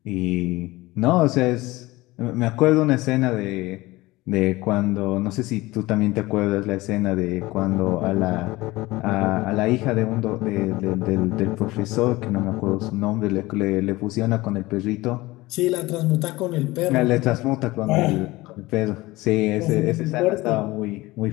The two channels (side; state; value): right; quieter; 19.9 dB